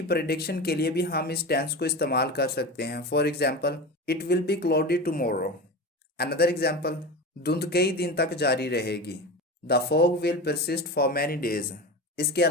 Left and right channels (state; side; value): normal; both; correlation 0.27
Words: प्रोडिक्शन के लिए भी हम इस टेंस को इस्तेमाल कर सकते हैं। For example, it will be cloudy tomorrow. Another example, धुंध कई दिन तक जारी रहेगी, the fog will persist for many days. इसके